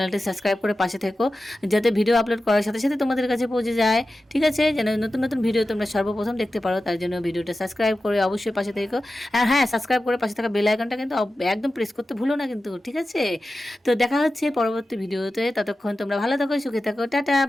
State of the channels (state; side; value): normal; both; correlation 0.94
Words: সাবস্ক্রাইব করে পাশে থেকো, যাতে ভিডিও আপলোড করার সাথে সাথে তোমাদের কাছে পৌঁছে যায়। ঠিক আছে, যেন নতুন নতুন ভিডিও তোমরা সর্বপ্রথম দেখতে পারো, তার জন্য ভিডিওটা সাবস্ক্রাইব করে অবশ্যই পাশে থেকো। আর হ্যাঁ, সাবস্ক্রাইব করে পাশে থাকা বেল আইকনটা কিন্তু একদম প্রেস করতে ভুলো না কিন্তু, ঠিক আছে? তো দেখা হচ্ছে পরবর্তী ভিডিওতে, ততক্ষণ তোমরা ভালো থাকো, সুখে থাকো, টাটা,